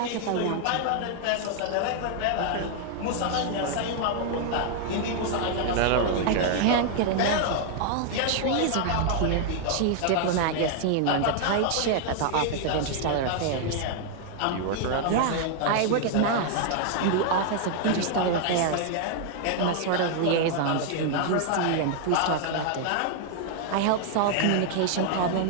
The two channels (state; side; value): different; both; correlation 0.00